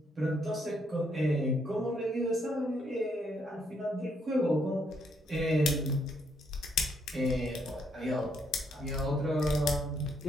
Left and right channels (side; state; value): both; normal; correlation 0.73